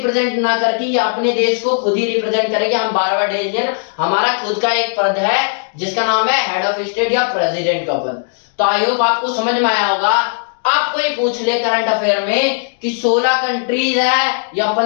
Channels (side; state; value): right; silent; digital silence